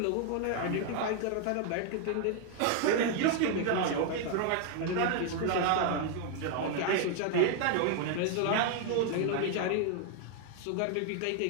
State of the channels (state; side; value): different; both; correlation 0.00